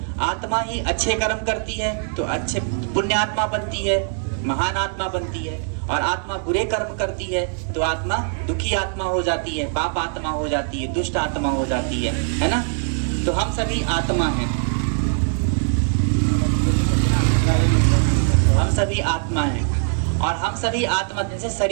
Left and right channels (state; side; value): silent; left; 64 dB below the other